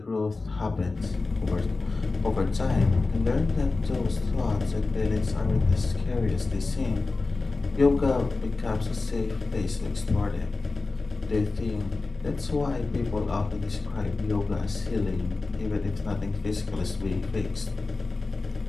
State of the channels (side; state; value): right; quieter; 3.7 dB